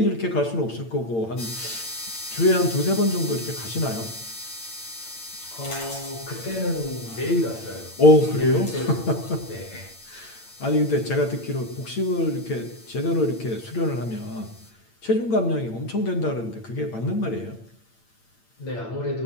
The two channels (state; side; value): late; right; 8.8 ms